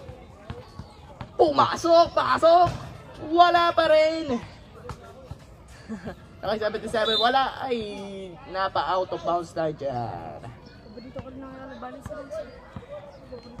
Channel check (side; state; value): both; identical; correlation 1.00